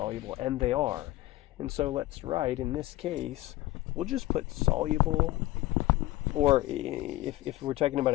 and they are. And so let's write, in this case, we'll just put soluble, or if we're talking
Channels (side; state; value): right; quieter; 17.1 dB